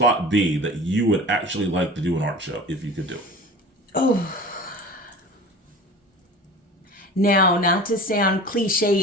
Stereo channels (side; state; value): both; normal; correlation 0.38